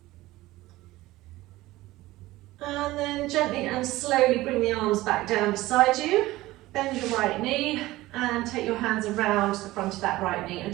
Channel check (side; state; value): left; quieter; 17.8 dB